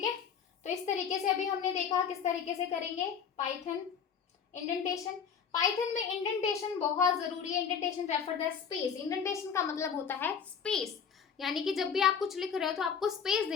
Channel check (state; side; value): quieter; right; 7.0 dB